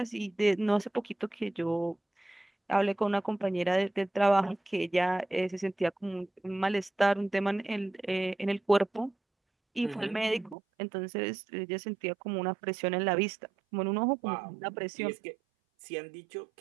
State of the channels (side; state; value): left; drops out; at 10.6 s